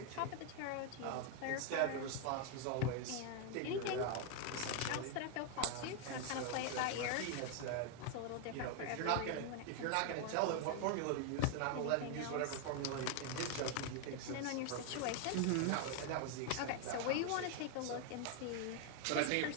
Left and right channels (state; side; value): different; both; correlation 0.01